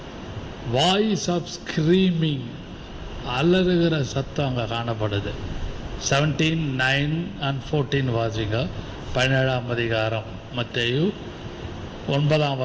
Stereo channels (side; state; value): both; identical; correlation 1.00